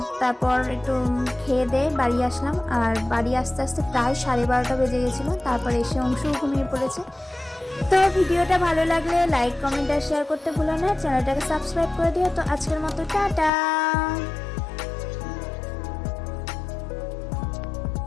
তারপর একটু খেয়ে দিয়ে বাড়ি আসলাম, আর বাড়ি আসতে আসতে প্রায় 12:30 বেজে গেছিলো। তারপর এসে অংশও ঘুমিয়ে পড়েছে। তো ভিডিওটা ভালো লাগলে লাইক, কমেন্ট আর শেয়ার করতে ভুলো না, চ্যানেলটাকে সাবস্ক্রাইব করে দিও। তো আজকের মতো টাটা।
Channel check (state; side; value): drops out; right; at 13.5 s